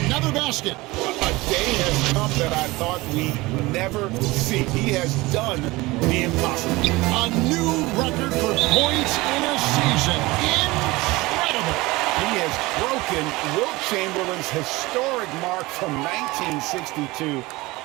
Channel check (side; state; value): left; quieter; 21.3 dB